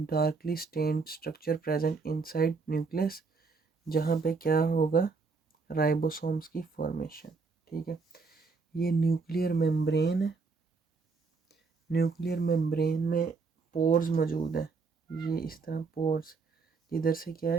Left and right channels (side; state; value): left; quieter; 4.5 dB